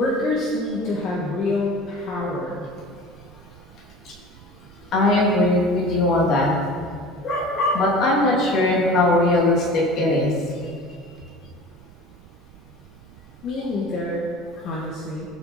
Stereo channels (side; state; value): right; noise; rumble, 23 dB below the sound